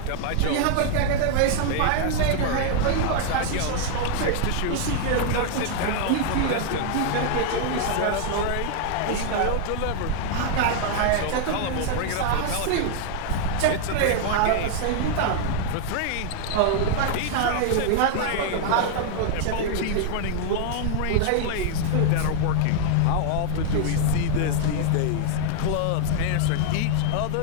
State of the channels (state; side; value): different; both; correlation 0.00